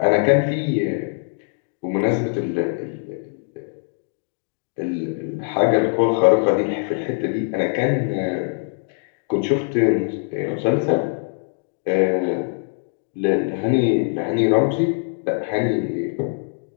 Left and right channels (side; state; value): right; silent; digital silence